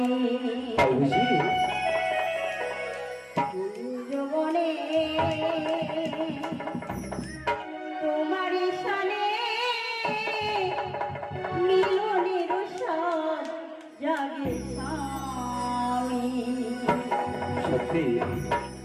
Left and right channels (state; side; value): identical; both; correlation 1.00